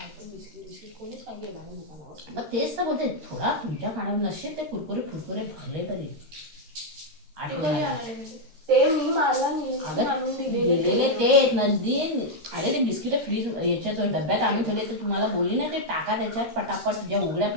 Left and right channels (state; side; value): late; left; 13 ms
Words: बिस्किट कोणीच काय गेला नाही दुकानावर. मग तेच तर बोलते, थोडा तुमच्या खाण्यावर नसेल ते कुरकुरे फुरकुरे भरले तरी ते कधी आणाले ते मी मला आणून दिलेले ते नंदी. अरे ते बिस्किट फ्रीज याच्यात डब्यात आणून ठेवले तर तुम्हाला बोलली ना ते टाका त्याच्यात पटापट. ज्या उघड्या